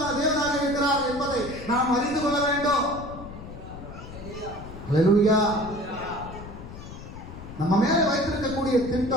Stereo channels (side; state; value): left; noise; rumble, 12 dB below the sound